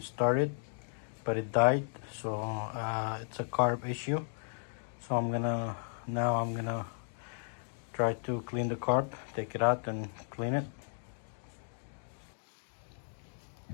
started, but it died. So it's a carb issue. So now I'm gonna try to clean the carb, take it out and clean it.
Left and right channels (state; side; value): silent; right; digital silence